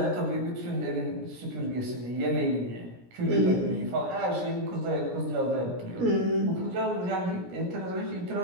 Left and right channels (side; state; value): left; late; 17 ms